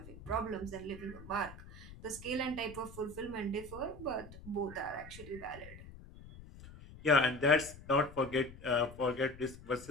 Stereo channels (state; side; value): noise; left; rumble, 16 dB below the sound